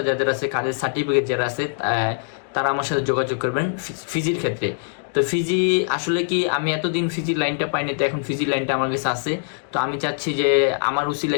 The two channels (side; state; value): right; silent; digital silence